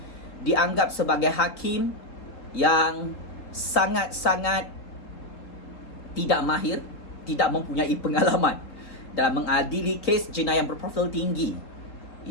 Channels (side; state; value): right; late; 3.7 ms